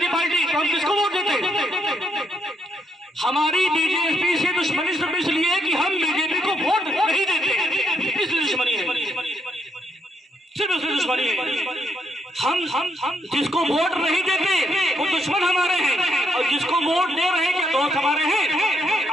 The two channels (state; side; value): normal; both; correlation 0.75